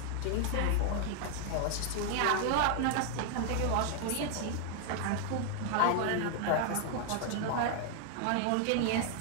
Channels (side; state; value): both; different; correlation 0.00